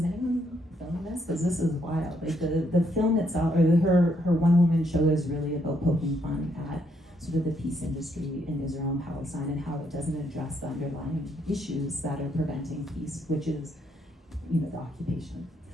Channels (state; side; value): normal; both; correlation 0.74